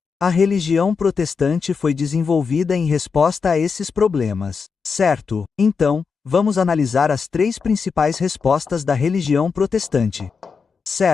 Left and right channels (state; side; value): quieter; right; 5.5 dB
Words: A religião protestante foi desenvolvida em resposta a esses problemas. Certo? Então, vamos analisar as três principais respostas da religião protestante.